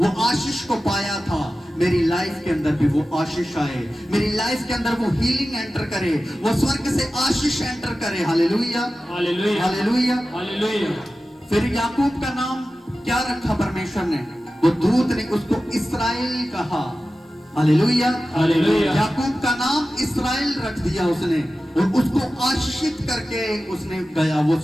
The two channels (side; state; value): both; normal; correlation 0.94